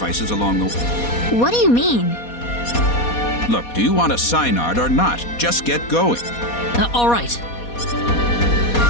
along the way. What do you mean? Look, do you want a Psynard or not? Just get going. All right.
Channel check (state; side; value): late; right; 4.2 ms